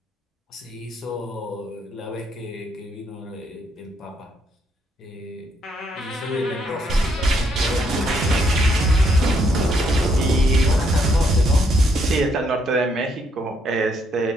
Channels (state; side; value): normal; both; correlation 0.73